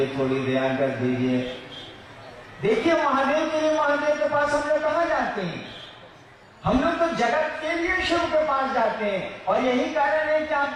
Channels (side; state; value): both; identical; correlation 1.00